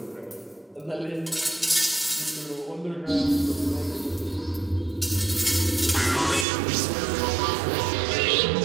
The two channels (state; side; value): drops out; left; at 6.5 s